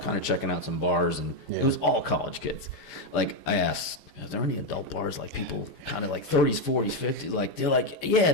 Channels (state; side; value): late; right; 5.0 ms